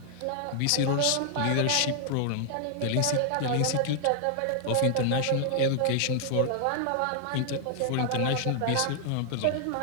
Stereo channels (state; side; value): different; both; correlation 0.00